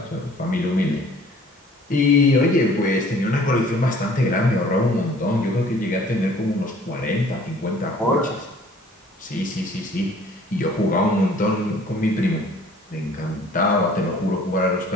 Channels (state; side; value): normal; both; correlation 0.53